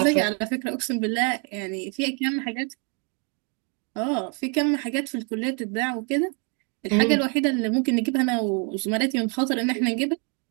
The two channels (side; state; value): left; quieter; 36.9 dB